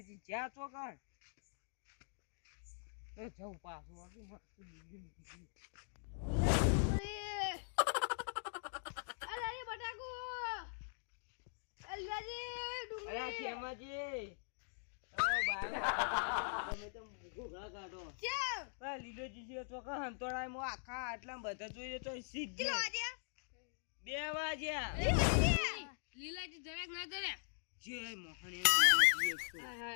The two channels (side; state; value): right; silent; digital silence